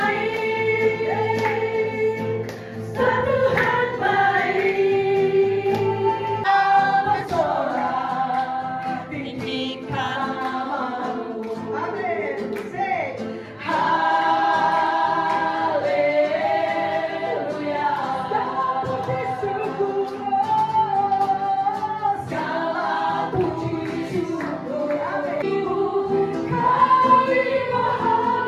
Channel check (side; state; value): both; identical; correlation 1.00